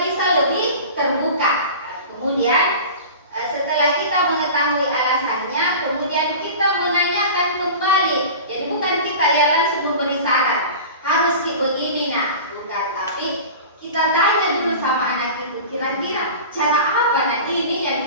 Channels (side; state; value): both; inverted; correlation -0.35